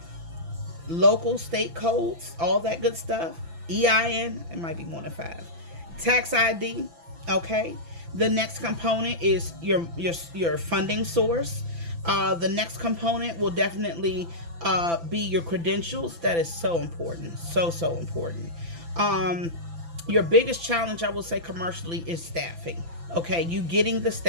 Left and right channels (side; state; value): left; late; 6.0 ms